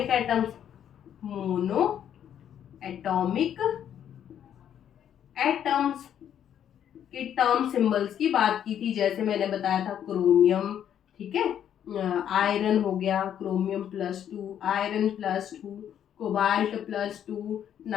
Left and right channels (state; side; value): quieter; right; 9.7 dB